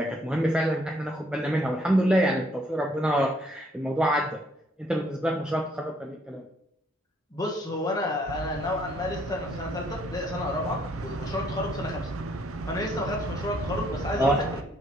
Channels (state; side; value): normal; both; correlation 0.67